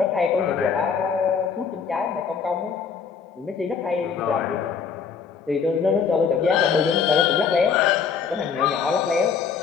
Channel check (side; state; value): right; quieter; 6.2 dB